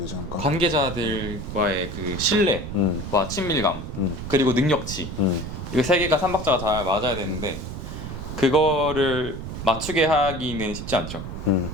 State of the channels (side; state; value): right; noise; rumble, 8 dB below the sound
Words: 않을까? 관계자들과의 그 신뢰와 친밀감 그리고 능력치 이거 세 개가 삼박자가 잘 맞아야 되는데 그거를 맞추게 하기는 쉽지 않죠.